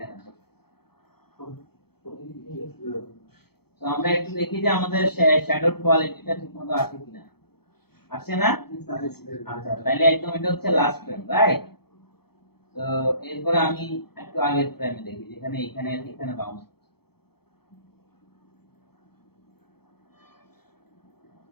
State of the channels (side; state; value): right; late; 0.96 ms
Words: তো আমরা একটু দেখি যে আমাদের শ্যাডোর কোয়ালিটিটা ঠিকমতো আসে কিনা। আসে না? আচ্ছা, তাহলে একদম এটা হচ্ছে লাস্ট ফ্রেম, রাইট? তো এরপরে আমি একটু আগের ফ্রেমে দেখি যেখানে এখানে এখানে বাউন্স,